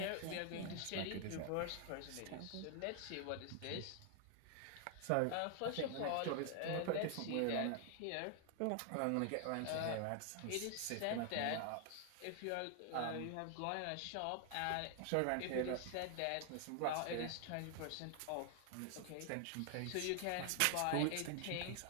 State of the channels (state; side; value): different; both; correlation 0.00